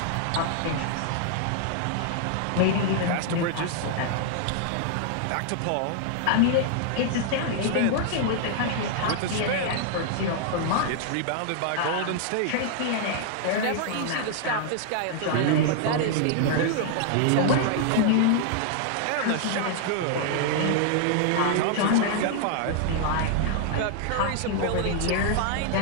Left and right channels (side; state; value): both; different; correlation -0.01